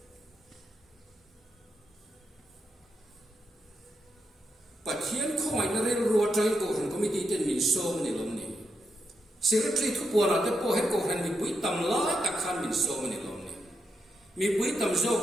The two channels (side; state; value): both; normal; correlation 0.84